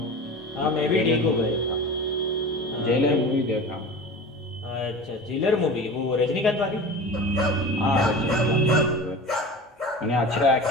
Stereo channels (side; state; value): both; normal; correlation 0.34